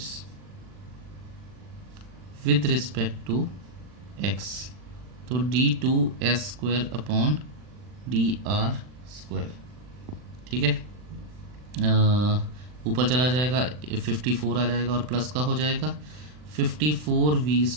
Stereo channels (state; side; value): late; left; 40 ms